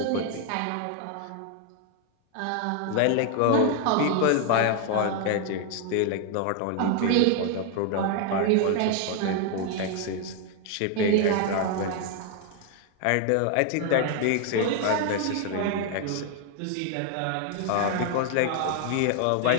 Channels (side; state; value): both; different; correlation 0.00